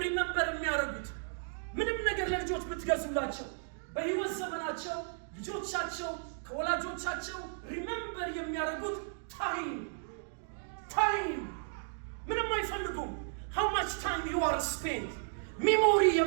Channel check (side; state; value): left; silent; digital silence